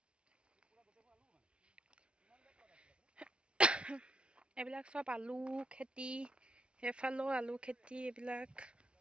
এইবিলাক চব আলু খেতি, সেইফালেও আলু খেতি। এইবিলাক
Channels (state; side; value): late; left; 0.058 ms